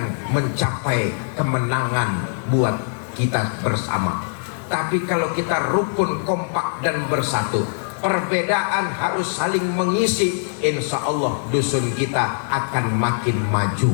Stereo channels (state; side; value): silent; right; digital silence